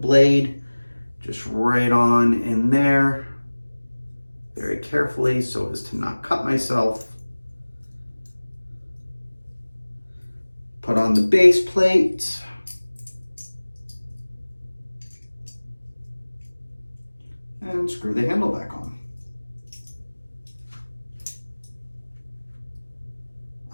just right on in there very carefully so as to not cut myself. Put on the base plate. And screw the handle back on.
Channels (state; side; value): inverted; both; correlation -1.00